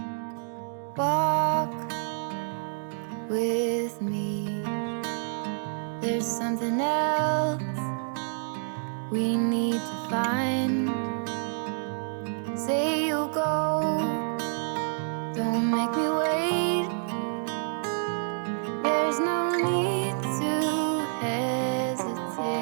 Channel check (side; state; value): left; silent; digital silence